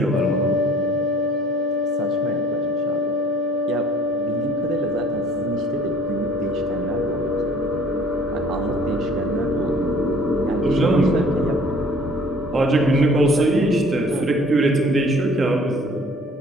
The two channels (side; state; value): both; normal; correlation 0.53